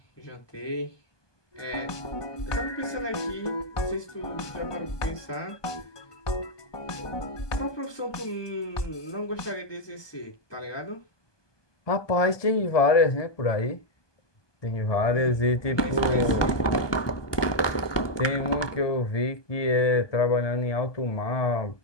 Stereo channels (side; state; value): right; late; 1.2 ms